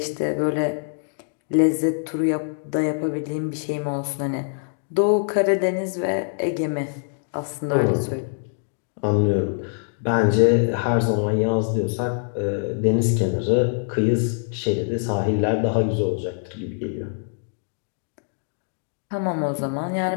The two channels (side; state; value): right; silent; digital silence